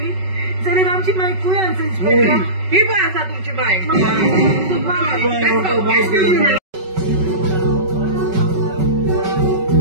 जाल्यार आमची माय खंय आसा इन्स्पेक्टर ही पळय आसा तुमची माय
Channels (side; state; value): left; late; 5.3 ms